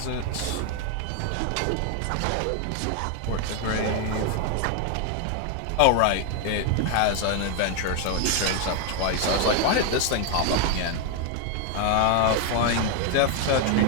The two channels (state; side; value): different; both; correlation 0.01